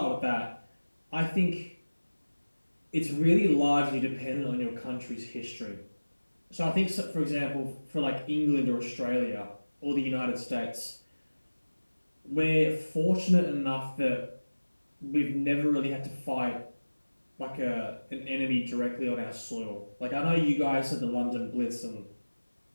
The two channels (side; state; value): both; inverted; correlation -1.00